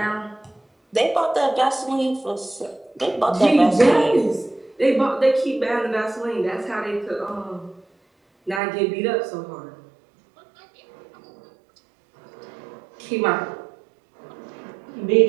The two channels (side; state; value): left; drops out; at 8.6 s